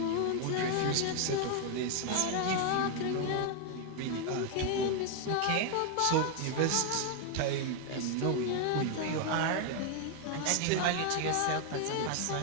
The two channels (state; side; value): different; both; correlation 0.01